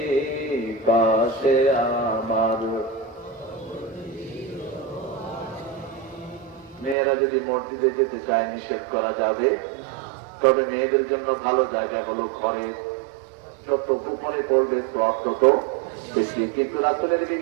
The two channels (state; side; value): drops out; left; at 7.0 s